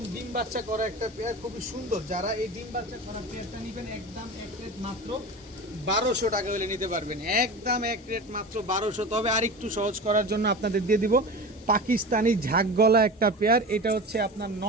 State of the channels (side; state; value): both; normal; correlation 0.30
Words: ডিম বাচ্চা করা একটা পেয়ার, খুবই সুন্দর। যারা এই ডিম বাচ্চা করা পেয়ারটা নেবেন একদম এক রেট মাত্র 1200 টাকা হলে নিতে পারবেন। একদম এক রেট মাত্র 1200। তবে আর একটু সহজ করার জন্য আপনাদের দিয়ে দিব পাকিস্তানি ঝাঁকগলা একটা পেয়ার। এটা হচ্ছে আপনার